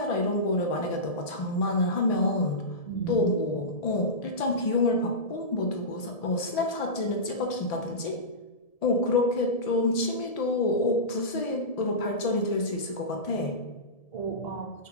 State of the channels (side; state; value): right; late; 1.7 ms